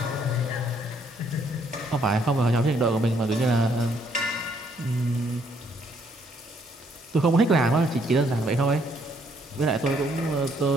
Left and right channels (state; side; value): normal; both; correlation 0.69